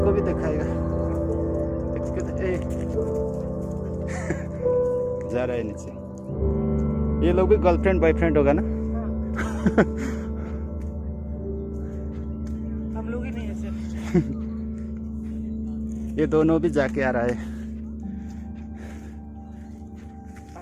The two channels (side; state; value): both; identical; correlation 1.00